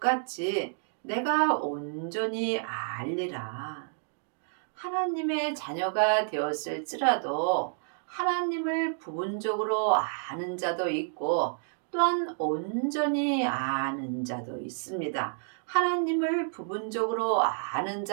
내가 온전히 알리라. 하나님의 자녀가 되었을지라도 하나님을 부분적으로 아는 자도 있고 또한 온전히 아는 자도 있습니다. 하나님을 부분적으로 아는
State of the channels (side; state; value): left; silent; digital silence